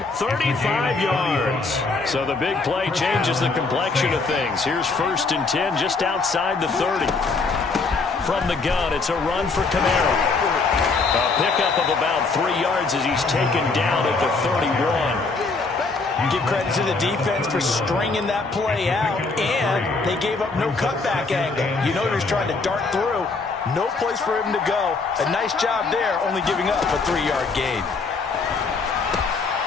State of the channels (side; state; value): right; quieter; 4.0 dB